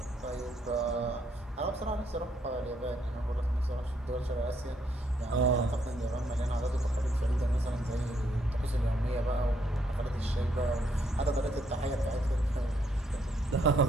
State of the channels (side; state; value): both; normal; correlation 0.72